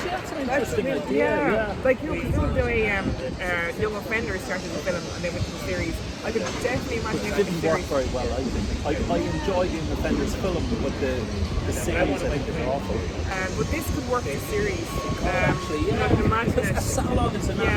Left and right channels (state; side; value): identical; both; correlation 1.00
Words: that's an interesting idea. Like, because the way Young Offenders started the film and then went to the series, I could definitely imagine it didn't work very well, I think. I enjoyed Young Offenders film, but the series I think is awful. But this could work in series. Actually, I can imagine because it. a salon is a